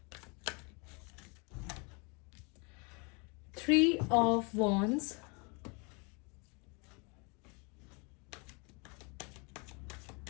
3 of Wands,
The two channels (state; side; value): quieter; right; 32.2 dB